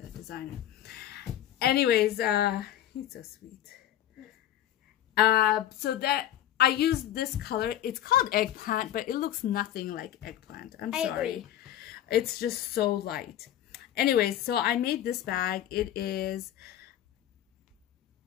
designer. Anyways, he's so sweet. So that I used this color. It's called Eggplant, but it looks nothing like Eggplant. I'm sorry. Agree. It's just so light. Anyways, so I made this bag. It is...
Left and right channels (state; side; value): quieter; right; 11.9 dB